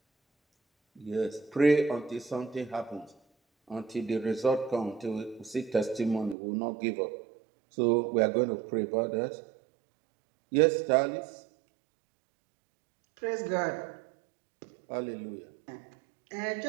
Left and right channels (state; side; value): drops out; left; at 6.4 s